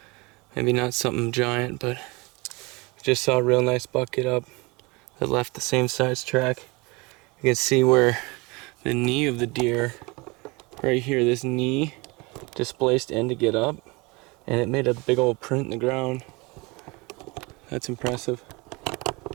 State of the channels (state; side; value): quieter; left; 26.1 dB